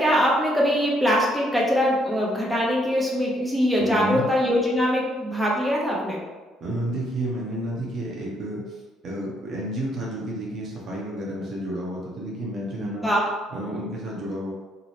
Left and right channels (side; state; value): both; normal; correlation 0.72